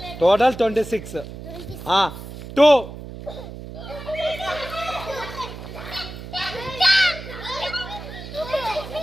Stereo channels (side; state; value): right; noise; hum, 11 dB below the sound